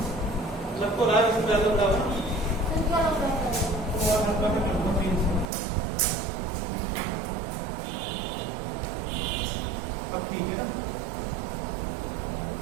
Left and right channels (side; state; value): left; drops out; at 5.5 s